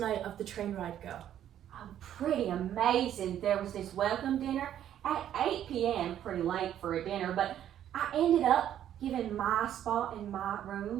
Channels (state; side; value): quieter; left; 10.8 dB